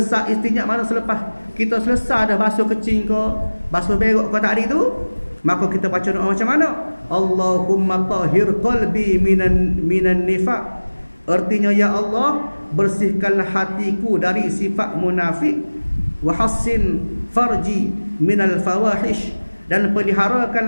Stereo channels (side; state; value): both; inverted; correlation -1.00